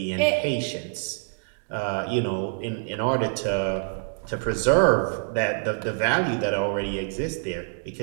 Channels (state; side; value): silent; left; digital silence